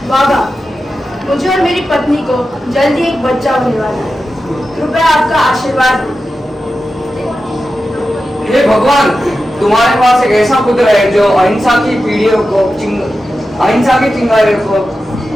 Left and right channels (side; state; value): both; normal; correlation 0.92